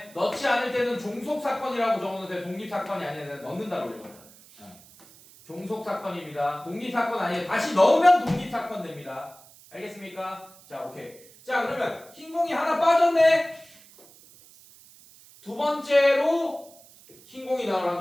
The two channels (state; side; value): noise; right; hiss, 23 dB below the sound